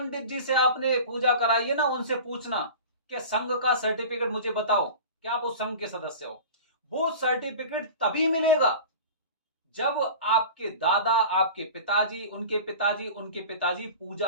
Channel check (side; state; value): both; inverted; correlation -0.36